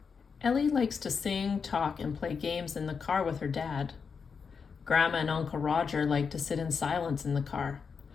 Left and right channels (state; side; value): quieter; right; 5.8 dB